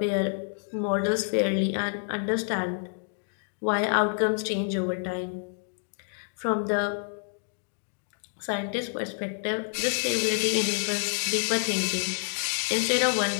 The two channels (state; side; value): silent; right; digital silence